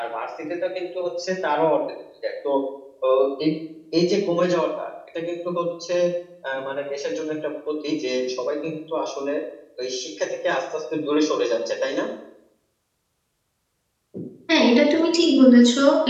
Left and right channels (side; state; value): both; identical; correlation 1.00